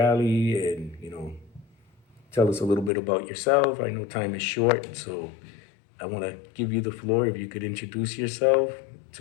and tell us a little bit about yourself. I know time is short, so I want to give you the floor. If you could introduce yourself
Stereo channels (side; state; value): right; drops out; at 2.9 s